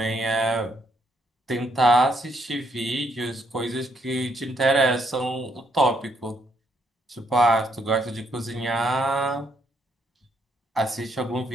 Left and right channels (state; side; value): normal; both; correlation 0.73